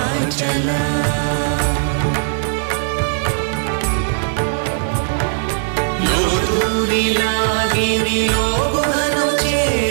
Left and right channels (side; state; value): left; silent; digital silence